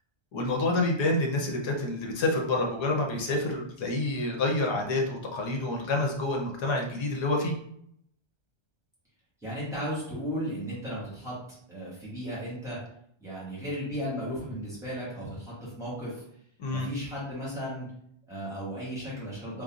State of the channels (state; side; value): late; right; 1.3 ms